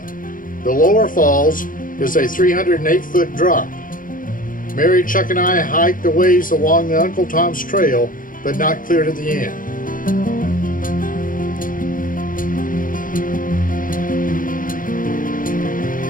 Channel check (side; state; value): right; late; 0.40 ms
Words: The lower falls is a 308-foot drop. Mary, Chuck, and I hiked a ways along the Uncle Tom's Trail, but not clear to the end.